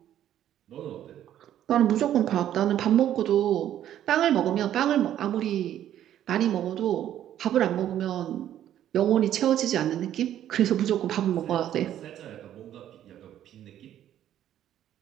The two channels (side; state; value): left; quieter; 11.3 dB